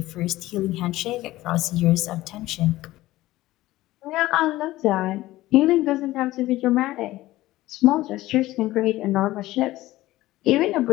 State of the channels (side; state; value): right; quieter; 16.9 dB